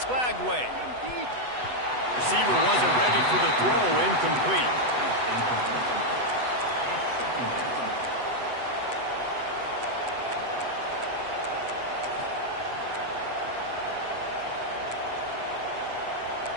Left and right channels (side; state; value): left; late; 8.0 ms